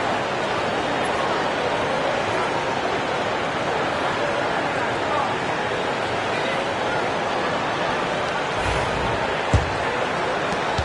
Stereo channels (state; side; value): identical; both; correlation 1.00